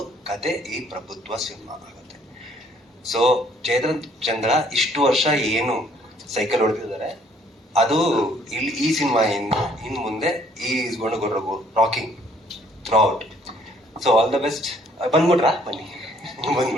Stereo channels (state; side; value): normal; both; correlation 0.62